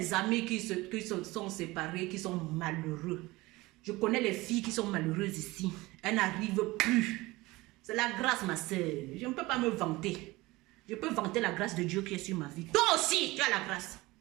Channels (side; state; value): left; quieter; 20.7 dB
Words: amis qui sont séparés, qui sont malheureux. Je connais les filles qui sont malheureuses ici. Elles n'arrivent plus. C'est la grâce, ma soeur. Je ne peux pas me vanter. Je peux vanter la grâce de Dieu qui est sur ma vie. Toi aussi, tu as la grâce.